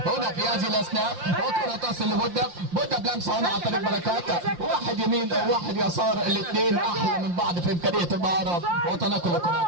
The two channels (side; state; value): left; late; 5.7 ms